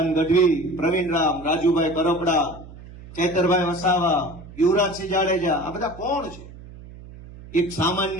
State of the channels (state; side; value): noise; right; hum, 17 dB below the sound